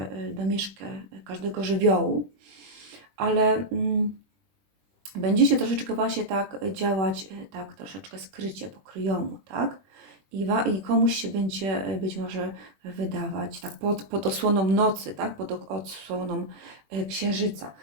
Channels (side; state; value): left; late; 20 ms